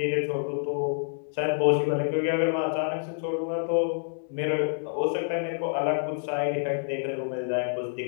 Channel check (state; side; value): silent; right; digital silence